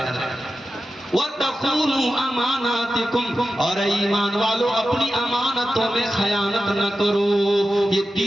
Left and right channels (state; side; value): normal; both; correlation 0.92